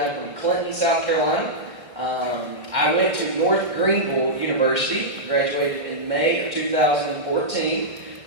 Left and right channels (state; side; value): late; left; 1.6 ms